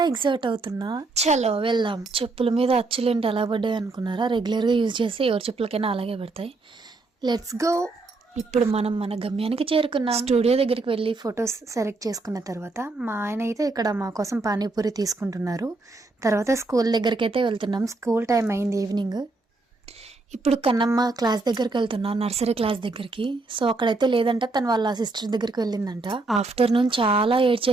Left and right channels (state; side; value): quieter; left; 3.4 dB